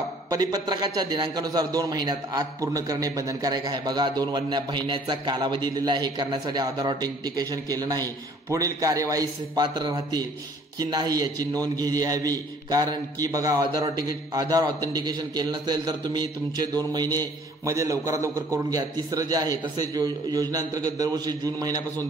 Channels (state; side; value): normal; both; correlation 0.56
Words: परिपत्रकाच्या दिनांकानुसार 2 महिन्यात आत पूर्ण करणे बंधनकारक आहे. बघा 2 महिन्याचा कालावधी दिलेला आहे. हे करण्यासाठी आधार ऑथेंटिकेशन केलं नाही पुढील कार्यवाहीस पात्र राहतील की नाही याची नोंद घ्यावी. कारण की बघा आधार ऑथेंटिकेशन केलं नसेल तर तुम्ही तुमचे 2 महिने मध्ये लवकरात लवकर करून घ्या. तिसरं जे आहे तसेच योजनेअंतर्गत दरवर्षी जून महिन्यापासून